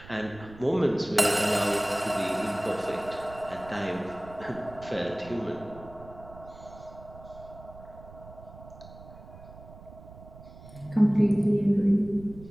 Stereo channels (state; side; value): noise; right; rumble, 18 dB below the sound